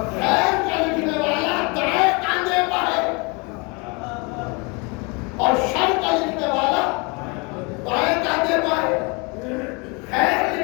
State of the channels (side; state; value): right; quieter; 30.1 dB